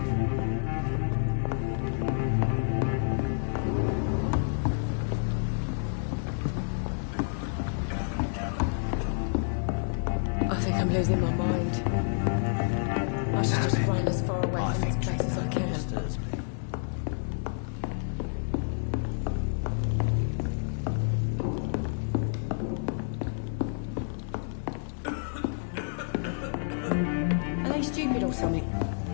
I think I'm losing my mind. I should just run as far away from this place as I can. Stupid or something.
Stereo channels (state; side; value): silent; right; digital silence